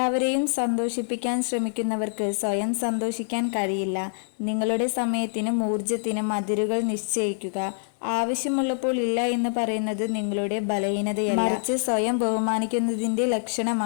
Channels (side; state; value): right; silent; digital silence